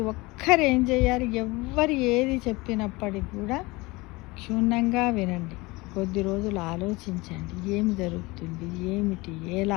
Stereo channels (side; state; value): right; quieter; 23.2 dB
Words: ఒక్కరు ఏం చేయాలి, ఎవ్వరు ఏది చెప్పినప్పటికి కూడా క్షుణ్ణంగా వినండి, కొద్ది రోజులు ఆలోచించండి ఏమి జరుగుతుంది ఏమిటి